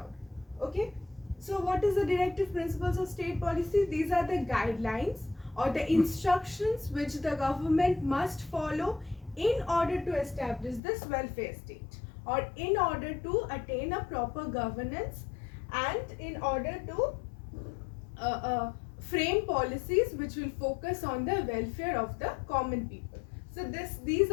Okay, so what is the directive principles of state policy? These are the guidelines or the instructions which the government must follow in order to establish this welfare state, or in order to attain a proper governance, and in order to frame policies which will focus on the welfare of the common people. So these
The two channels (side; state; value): right; drops out; at 10.8 s